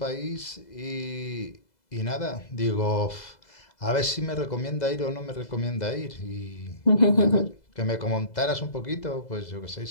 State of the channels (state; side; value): late; right; 2.0 ms